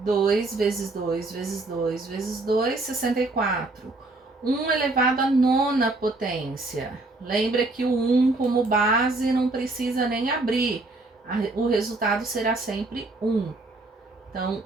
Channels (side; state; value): left; quieter; 3.1 dB